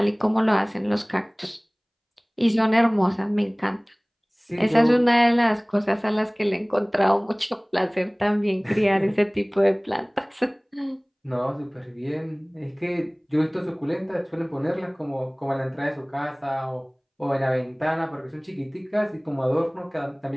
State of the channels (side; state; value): both; identical; correlation 1.00